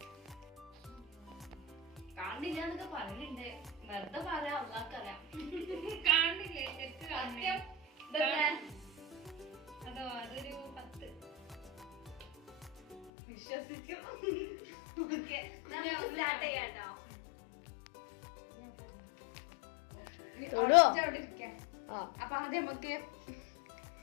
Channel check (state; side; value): drops out; right; at 13.1 s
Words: കാണില്ല എന്നൊക്കെ പറയുന്നുണ്ട്, വെറുതെ പറയാം, അള്ളാക്കറിയാം. കാണില്ലേ? അതോ അതൊരു 10 വിശ്വസിച്ചു. ഓക്കെ, സ്റ്റാർട്ട് ചെയ്യാട്ടോ. അപ്പൊ ആദ്യം നമുക്ക്